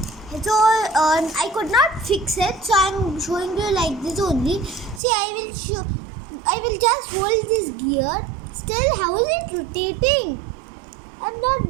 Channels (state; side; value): drops out; left; at 5.0 s